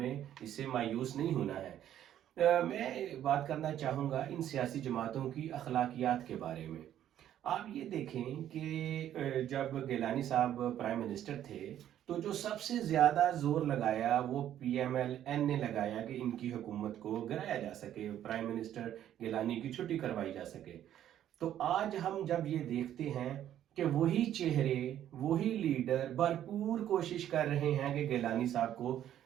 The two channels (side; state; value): left; quieter; 11.2 dB